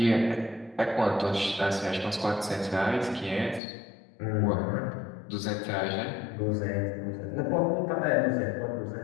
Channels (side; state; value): right; drops out; at 3.6 s